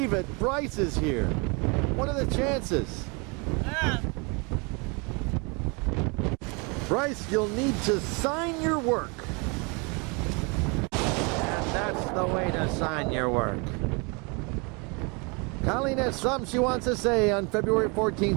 it, Bryce is here. What are the chances? Bryce, you'll need to sign your work. And that's the way to sign your work. Colleen has something she wants to say on February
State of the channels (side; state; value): left; quieter; 31.0 dB